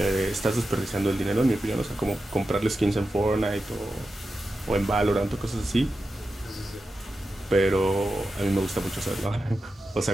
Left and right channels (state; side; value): normal; both; correlation 0.91